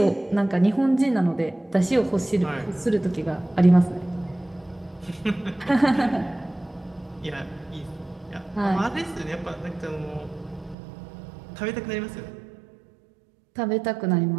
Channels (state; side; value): drops out; left; at 10.8 s